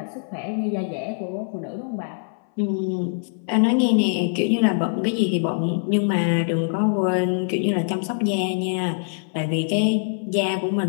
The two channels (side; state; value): right; silent; 60 dB below the other